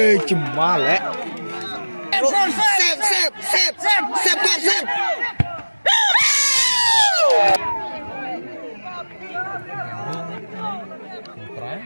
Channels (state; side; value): inverted; both; correlation -1.00